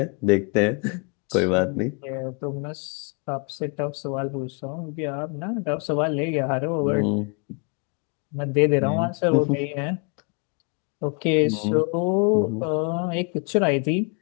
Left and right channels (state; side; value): quieter; right; 35.5 dB